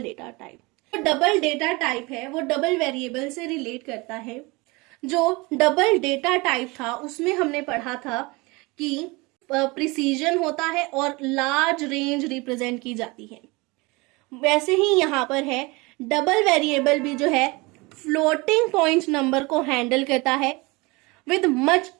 data type. जो डबल डेटा टाइप है वो डबल वेरिएबल से रिलेट करता है। जो डबल डेटा टाइप था उसमें हमने पढ़ा था कि प्रिसीजन होता है और लार्ज रेंज रिप्रेजेंट की जाती है। वैसे ही यहाँ पर है डबल वेरिएबल भी जो है फ्लोटिंग पॉइंट नंबर को हैंडल करता है with much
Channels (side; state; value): left; quieter; 25.1 dB